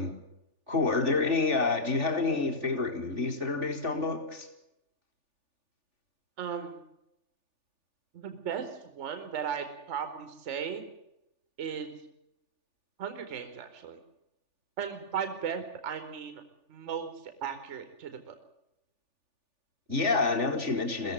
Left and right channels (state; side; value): late; left; 3.4 ms